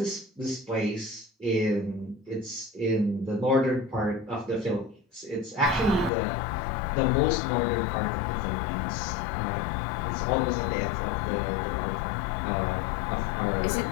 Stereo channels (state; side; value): drops out; right; at 6.1 s